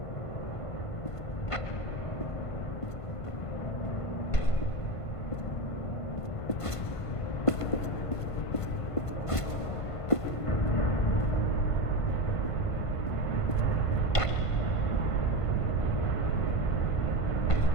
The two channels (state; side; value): late; right; 1.5 ms